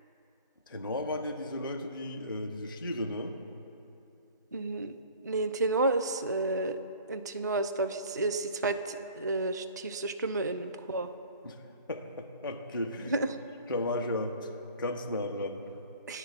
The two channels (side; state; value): both; inverted; correlation -0.46